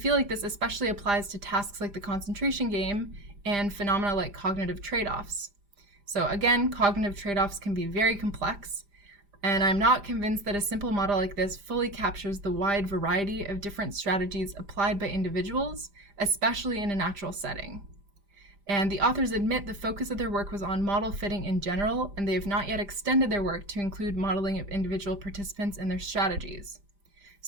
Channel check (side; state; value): left; late; 5.0 ms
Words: like this especially applies to tasks like the concentration game and phenomena like cognitive trade-offs. So again, cognitive trade-offs can be very complex, and I'm not convinced that a simple model like this fully captures the wide variety of different strategies applied by individuals, especially in a natural setting. And the authors admit the focus of their work was on model fitting in general, and they have not yet extended their work to include modeling of individual participants and their strategies.